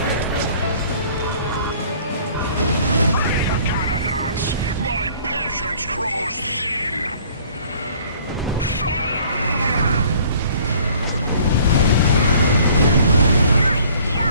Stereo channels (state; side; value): inverted; both; correlation -0.54